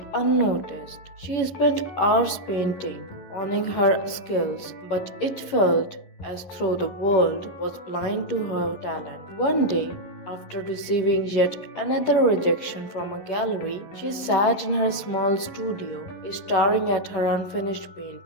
unnoticed. She spent hours painting, honing her skills, but it felt as though the world was blind to her talent. One day, after receiving yet another rejection from a gallery, she sat in her small studio, staring at her unfinished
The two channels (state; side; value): late; right; 11 ms